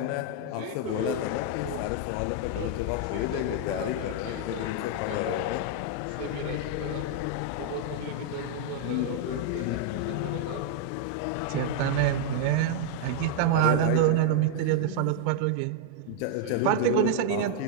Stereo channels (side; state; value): both; different; correlation 0.00